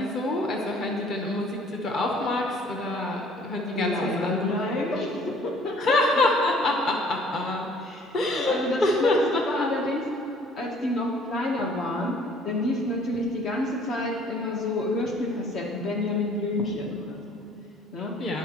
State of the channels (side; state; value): both; normal; correlation 0.56